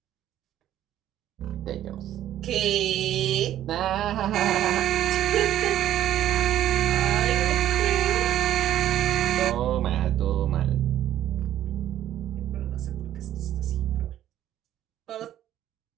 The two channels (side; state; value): left; quieter; 12.1 dB